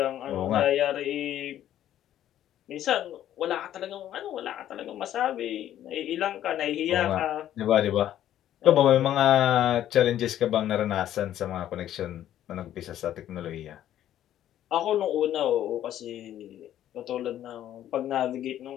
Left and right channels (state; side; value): quieter; right; 11.8 dB